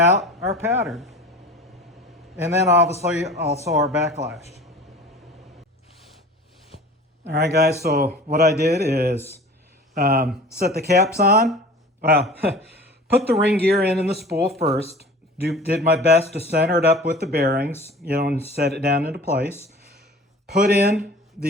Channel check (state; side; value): normal; both; correlation 0.41